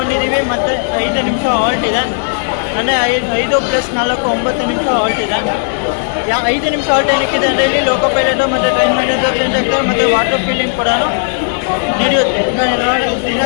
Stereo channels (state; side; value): silent; right; digital silence